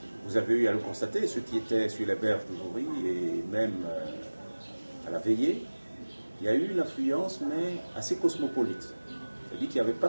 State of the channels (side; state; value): both; inverted; correlation -1.00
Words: vous avez eu à le constater, ceux qui étaient sur les berges du Jouri et même à la veillée, il y a eu une affluence, mais assez cosmopolite. C'est-à-dire qu'il n'y avait pas